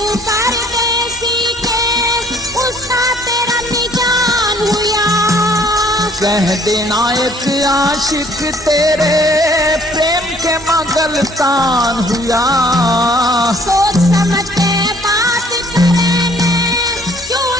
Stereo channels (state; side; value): normal; both; correlation 0.59